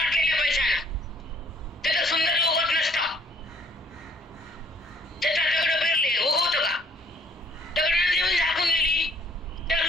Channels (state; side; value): normal; both; correlation 0.61